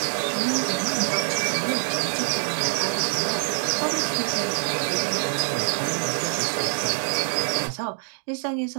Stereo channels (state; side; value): silent; left; digital silence